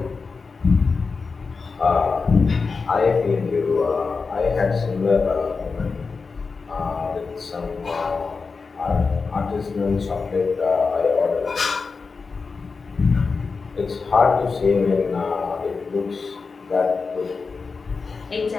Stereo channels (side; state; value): right; quieter; 4.6 dB